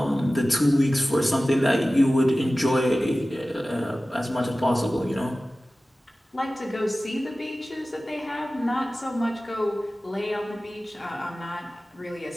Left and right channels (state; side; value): normal; both; correlation 0.96